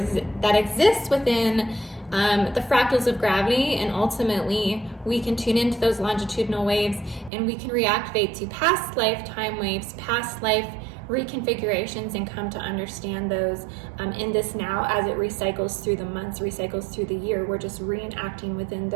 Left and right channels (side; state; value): left; drops out; at 7.3 s